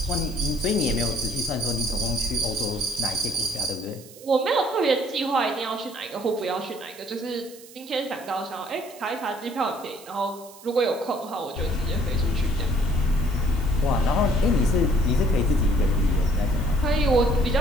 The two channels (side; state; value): right; noise; hiss, 20 dB below the sound